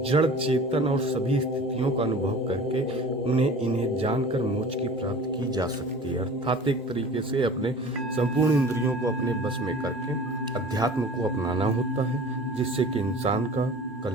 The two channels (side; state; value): both; normal; correlation 0.41